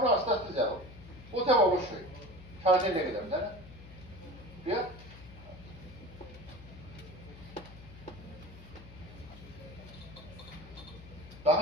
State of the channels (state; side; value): noise; left; hum, 16 dB below the sound